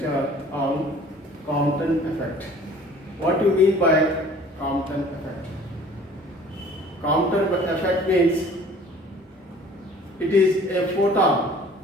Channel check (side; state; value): both; normal; correlation 0.50